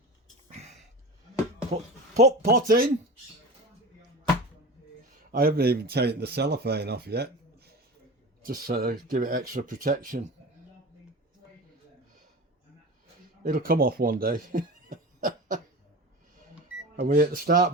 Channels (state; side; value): normal; both; correlation 0.30